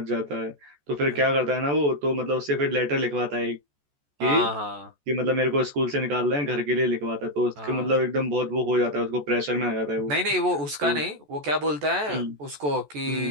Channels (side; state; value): left; late; 14 ms